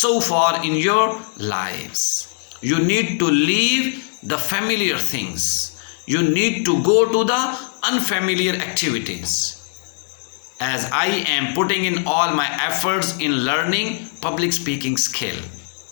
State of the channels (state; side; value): silent; right; digital silence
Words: far in your lives. You need to leave the familiar things. You need to go to the unfamiliar activities. As I am putting in all my efforts in learning public speaking skill.